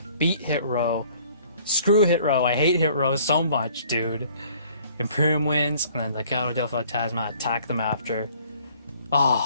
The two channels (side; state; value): both; inverted; correlation -0.57